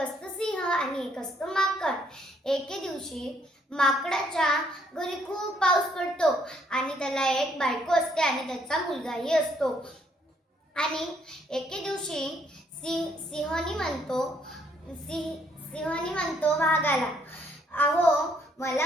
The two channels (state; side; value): normal; both; correlation 0.68